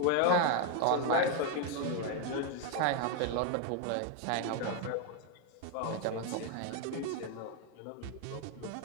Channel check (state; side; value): different; both; correlation 0.01